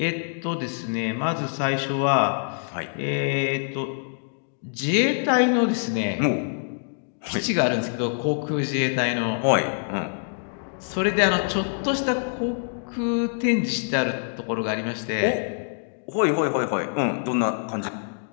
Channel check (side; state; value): right; silent; digital silence